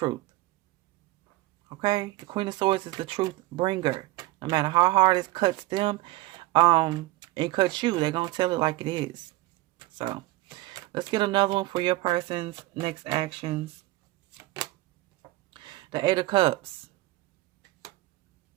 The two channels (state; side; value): quieter; left; 18.7 dB